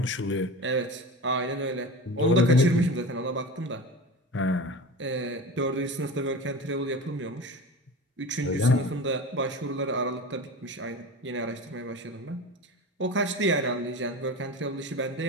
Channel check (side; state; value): both; normal; correlation 0.31